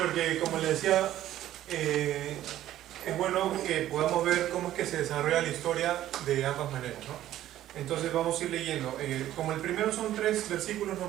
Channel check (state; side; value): quieter; left; 13.1 dB